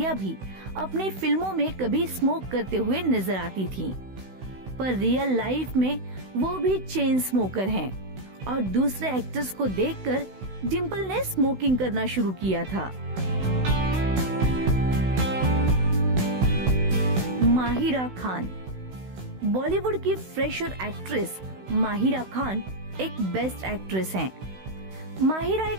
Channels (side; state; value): left; late; 16 ms